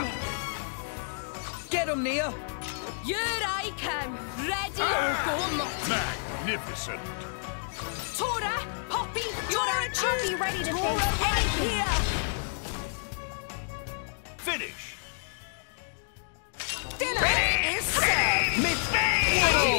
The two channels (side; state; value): right; silent; digital silence